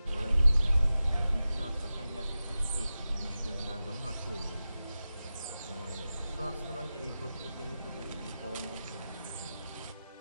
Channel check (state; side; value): inverted; both; correlation -0.94